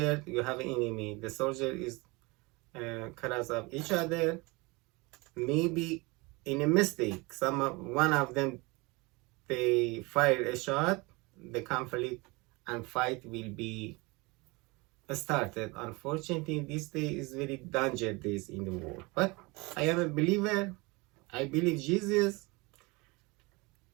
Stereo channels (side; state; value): left; quieter; 25.5 dB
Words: you have enemy. The soldier is cross of each other. Maybe in a mistake, one of them they fire a shot, the conflict and fight will be started. Unfortunately, this day is very dangerous days in the world. But I am a believer. I believe Jesus.